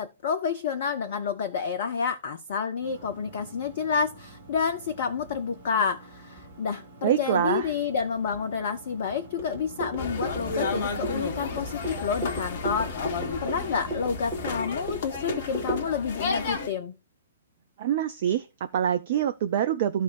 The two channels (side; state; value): both; inverted; correlation -0.45